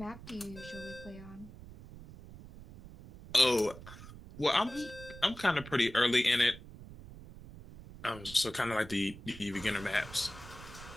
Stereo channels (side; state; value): right; noise; rumble, 16 dB below the sound